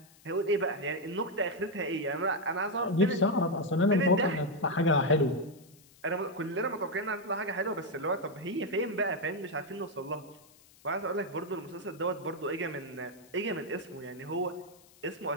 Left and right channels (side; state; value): left; noise; hiss, 26 dB below the sound